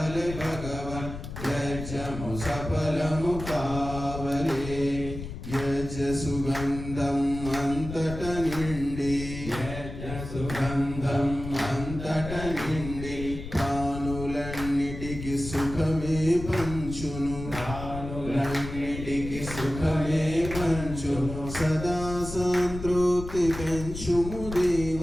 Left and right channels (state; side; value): noise; left; rumble, 9 dB below the sound